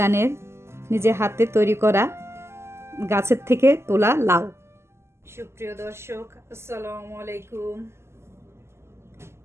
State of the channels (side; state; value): left; late; 0.13 ms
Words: নিজে হাতে তৈরি করা, গাছের থেকে তোলা লাউ। সুপ্রিয় দর্শক, আসসালামু আলাইকুম।